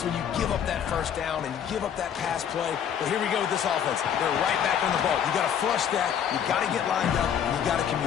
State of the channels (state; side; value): quieter; right; 8.7 dB